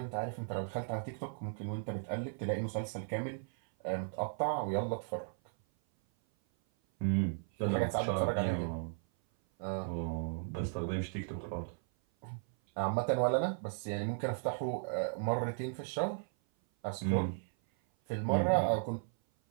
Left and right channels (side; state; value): left; silent; 54 dB below the other